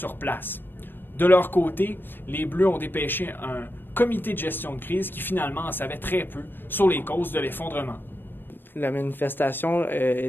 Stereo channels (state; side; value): late; right; 0.096 ms